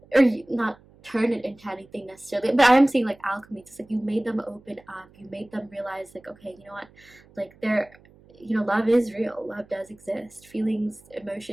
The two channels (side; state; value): right; noise; hum, 27 dB below the sound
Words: or not turn it into anything necessarily, but I'm seeing like alchemy. It's like you made them open up, you made them realize like, okay, you know what, like they're, love is real, love does exist, feelings,